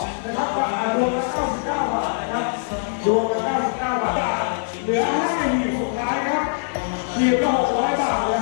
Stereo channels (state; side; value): silent; right; 64 dB below the other